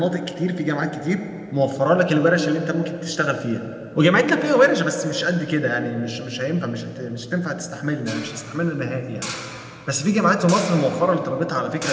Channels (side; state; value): both; identical; correlation 1.00